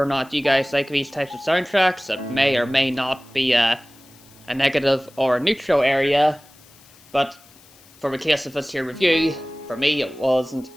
or not you guys like these types of soundtracks, it may or may not be a negative or a neutral area. But for the case of this here review, for me it wasn't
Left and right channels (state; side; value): noise; left; hiss, 26 dB below the sound